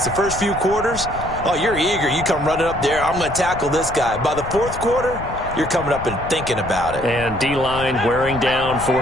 the first few quarters, oh, you're eager. You come running up there, I'm going to tackle this guy. By the 4th quarter, you're coming up and thinking about it. And D-line wearing down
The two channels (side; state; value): left; noise; rumble, 11 dB below the sound